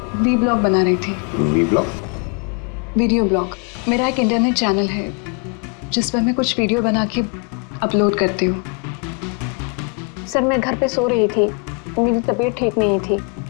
वी ब्लॉग बना रही थी। V blog? Video blog. मेरा एक इंटरनेट चैनल है जिस पर मैं कुछ वीडियो बना के अपलोड करती हूँ। सर, मैं घर पे सो रही थी, मेरी तबीयत ठीक नहीं थी।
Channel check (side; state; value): right; quieter; 36.9 dB